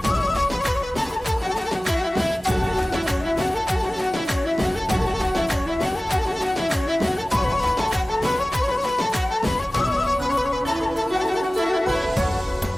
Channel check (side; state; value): both; normal; correlation 0.97